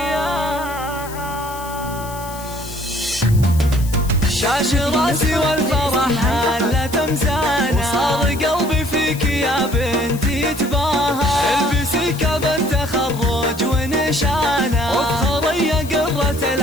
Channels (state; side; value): noise; left; hiss, 15 dB below the sound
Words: شاش راسي والفرح حالة مزانا، وصار قلبي فيك يا بنتي يتباهى. البسي كاب التخرج ونشانا، وافخري يا قرة